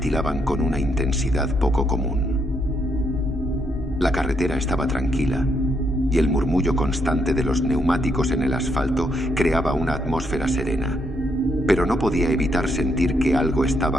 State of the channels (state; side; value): normal; both; correlation 0.76